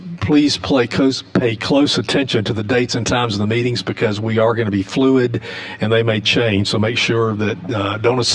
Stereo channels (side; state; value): both; identical; correlation 1.00